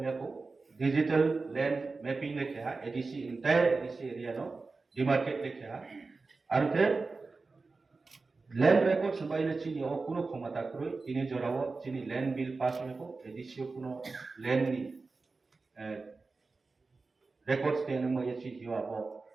डिजिटल लैंड मैपिंग लेके है एडीसी इंटायर एडीसी एरिया नो डिमार्केट लेके है और फिर लैंड रेकॉर्ड्स बायले चीनी और कुनो क्षमता करो इन्हें जोड़ावो चीनी लैंड बिल पास में को एडीसी कुनो लैंड नी रेकॉर्ड्स के नंबर ये चीज यो आपो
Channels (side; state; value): left; quieter; 4.0 dB